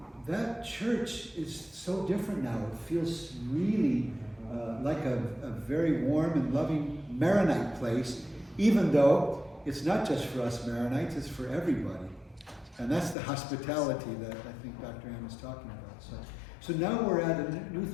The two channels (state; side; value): drops out; right; at 13.2 s